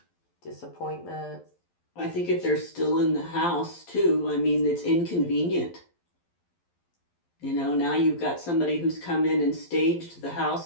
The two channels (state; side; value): late; right; 11 ms